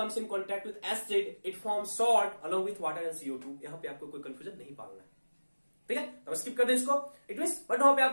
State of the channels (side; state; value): both; inverted; correlation -1.00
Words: acid, it forms salt along with water and CO2। यहां पे आपको कोई कंफ्यूजन नहीं पालना है, ठीक है, तो स्किप कर दें इसको। इट मींस बट वहां पे